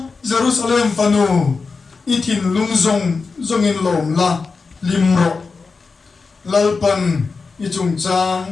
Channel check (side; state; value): right; quieter; 4.5 dB